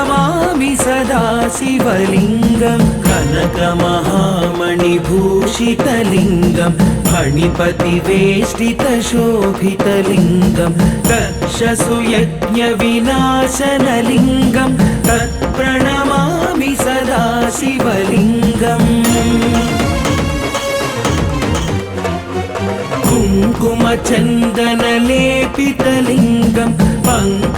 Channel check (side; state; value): both; identical; correlation 1.00